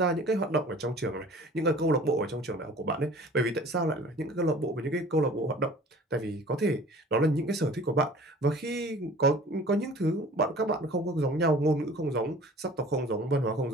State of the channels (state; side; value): normal; both; correlation 0.47